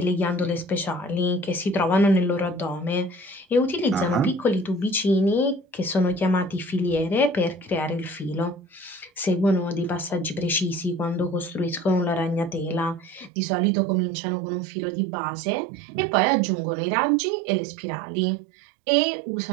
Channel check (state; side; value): drops out; left; at 13.3 s